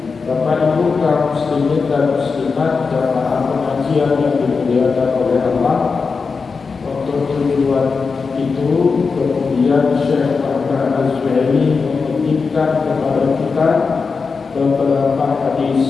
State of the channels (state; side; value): quieter; right; 4.9 dB